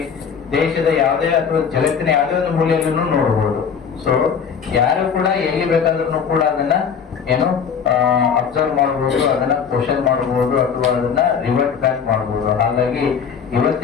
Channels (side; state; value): right; quieter; 6.8 dB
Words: ದೇಶದ ಯಾವುದೇ ಅಥವಾ ಜಗತ್ತಿನ ಯಾವುದೇ ಒಂದು ಮೂಲೆಯಲ್ಲೂ ನೋಡಬಹುದು. ಸೊ ಯಾರು ಕೂಡ ಎಲ್ಲಿ ಬೇಕಾದ್ರೂ ಕೂಡ ಅದನ್ನ ಏನು ಅಬ್ಸರ್ವ್ ಮಾಡಬಹುದು, ಅದನ್ನ ಕ್ವಶನ್ ಮಾಡಬಹುದು, ಅಥವಾ ಅದನ್ನ ರಿವರ್ಟ್ ಬ್ಯಾಕ್ ಮಾಡಬಹುದು. ಹಾಗಾಗಿ